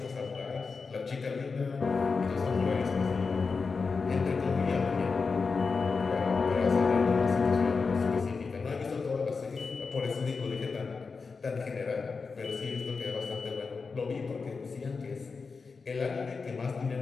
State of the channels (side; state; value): right; quieter; 4.7 dB